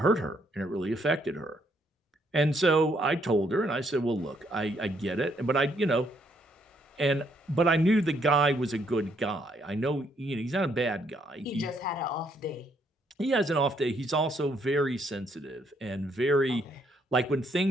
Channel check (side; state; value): both; normal; correlation 0.72